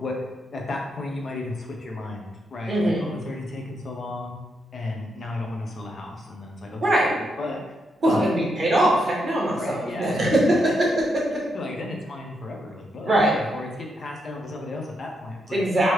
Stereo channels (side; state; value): both; normal; correlation 0.81